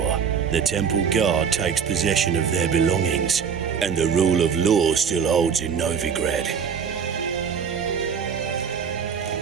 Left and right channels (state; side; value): quieter; left; 6.9 dB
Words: the Temple Guard takes possession of their belongings, and the rule of law still holds in Novigrad.